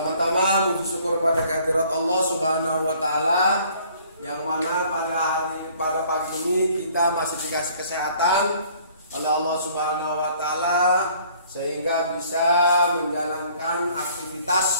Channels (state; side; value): inverted; both; correlation -0.57